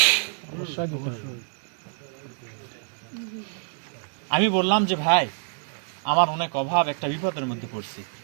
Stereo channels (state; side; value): silent; left; digital silence